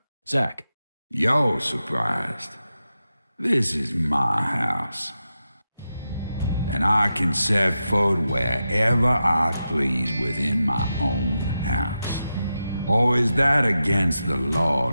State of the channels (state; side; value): inverted; both; correlation -0.90